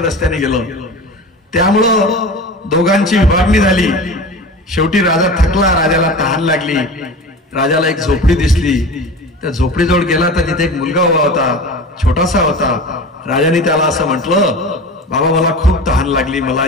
रस्त्याने गेलं. त्यामुळं दोघांची विभागणी झाली. शेवटी राजा थकला, राजाला तहान लागली. राजाला एक झोपडी दिसली. त्या झोपडीजवळ गेला तर तिथे एक मुलगा उभा होता, छोटासा होता. राजाने त्याला असं म्हटलं, बाबा मला खूप तहान लागली, मला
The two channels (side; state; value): both; normal; correlation 0.33